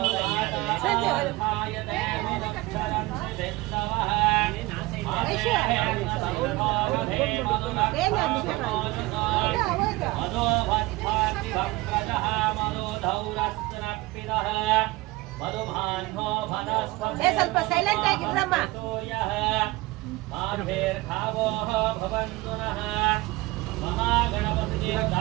ಸ್ವಲ್ಪ ಸೈಲೆಂಟ್ ಆಗಿದ್ರಮ್ಮ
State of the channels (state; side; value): quieter; left; 20.5 dB